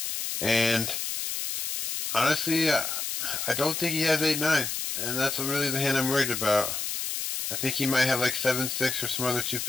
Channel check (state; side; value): noise; left; hiss, 3 dB below the sound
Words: And honestly, I don't think he has 8-9, and that's really the hand I'm worried about. I think he might have like 7-6 or some other two